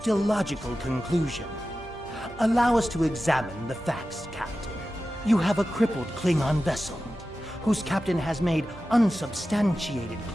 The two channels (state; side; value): normal; both; correlation 0.94